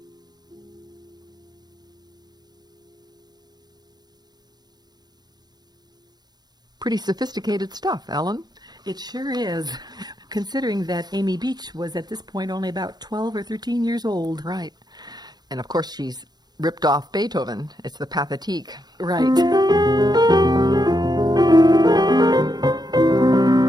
Pretty sophisticated stuff, Ellen. It sure is, considering that Amy Beach was at this point only about 12 or 13 years old. Right. And of course, she's ripped off Beethoven. It's the Pathétique. Right.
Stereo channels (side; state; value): left; late; 0.20 ms